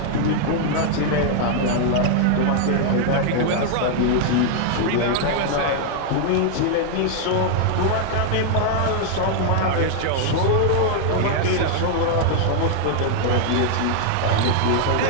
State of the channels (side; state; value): both; different; correlation 0.00